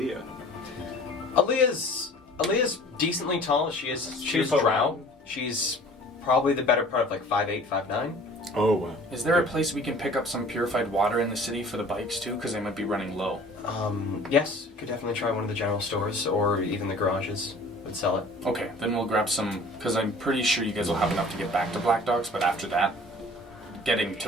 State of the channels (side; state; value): both; normal; correlation 0.47